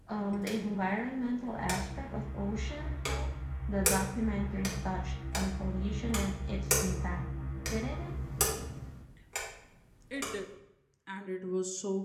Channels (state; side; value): identical; both; correlation 1.00